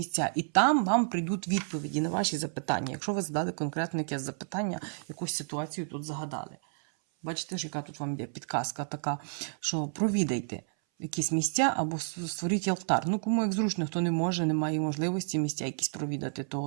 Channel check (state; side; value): silent; left; 57 dB below the other